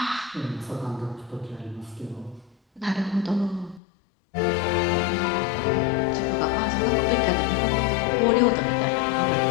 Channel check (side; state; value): right; drops out; at 3.8 s